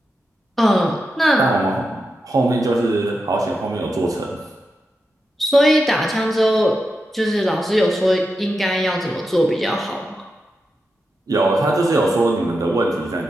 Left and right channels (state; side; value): normal; both; correlation 0.88